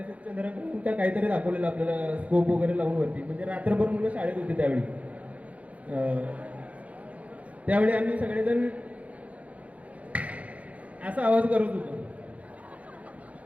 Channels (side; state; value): left; late; 0.067 ms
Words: असं चंद्रकांत का काहीतरी दाखवलेलं आपल्याला, स्कोप वगैरे लावून वरती, म्हणजे रात्रभर मुलं शाळेत होती त्यावेळी. त्यावेळी आम्ही सगळेजण असा आवाज करत होतो,